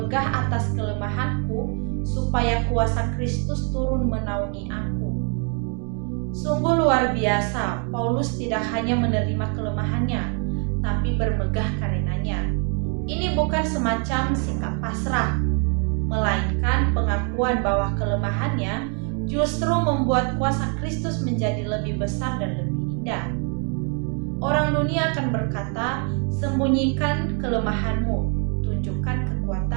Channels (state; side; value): quieter; left; 39.8 dB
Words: atas kelemahanku, supaya kuasa Kristus turun menaungi aku. Sungguh luar biasa, Paulus tidak hanya menerima kelemahannya, tapi bermegah karenanya. Ini bukan semacam sikap pasrah, melainkan pengakuan bahwa kelemahannya justru membuat kuasa Kristus menjadi lebih besar dan lebih indah. Orang dunia akan berkata, sembunyikan kelemahanmu, tunjukkan